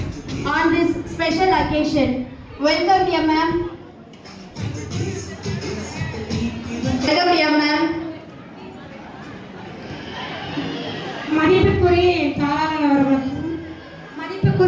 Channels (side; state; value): both; identical; correlation 1.00